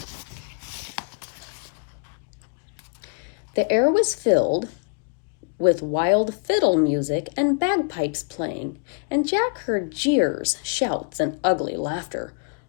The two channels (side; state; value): right; quieter; 37.5 dB